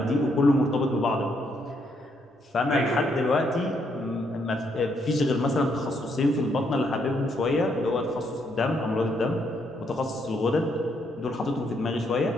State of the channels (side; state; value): both; normal; correlation 0.74